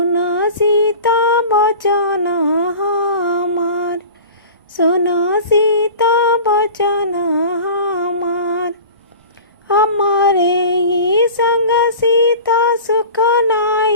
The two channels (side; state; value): both; inverted; correlation -0.38